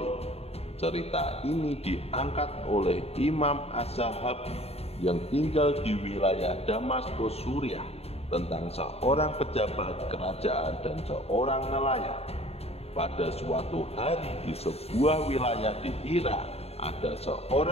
Cerita ini diangkat oleh Imam Az-Zahabi yang tinggal di wilayah Damaskus, Suriah, tentang seorang pejabat kerajaan dan seorang nelayan. Pada suatu hari di sebuah wilayah di Irak, ada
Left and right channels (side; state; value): right; late; 0.30 ms